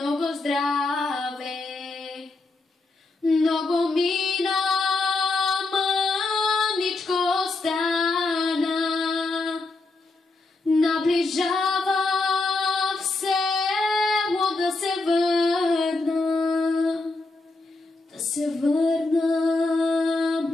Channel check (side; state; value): right; quieter; 3.4 dB